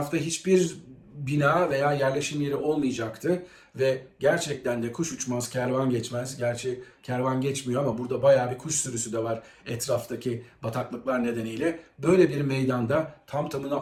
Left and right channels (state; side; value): identical; both; correlation 1.00